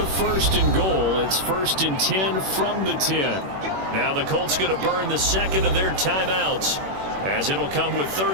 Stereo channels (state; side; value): late; left; 21 ms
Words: 1st and goal. It's 1st and 10 from the 10. Now the Colts going to burn the 2nd of their timeouts, as it'll come with